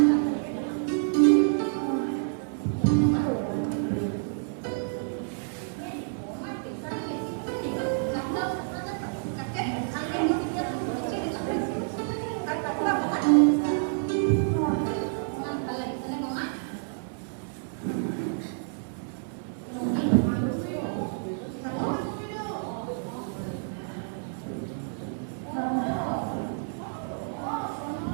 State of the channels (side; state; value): left; silent; 59 dB below the other